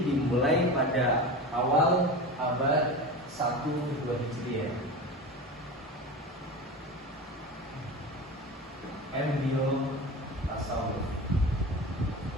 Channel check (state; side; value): normal; both; correlation 0.29